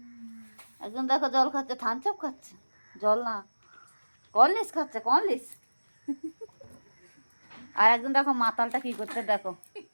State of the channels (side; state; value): both; inverted; correlation -1.00